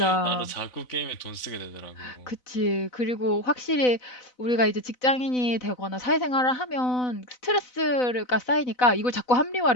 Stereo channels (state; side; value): late; right; 4.0 ms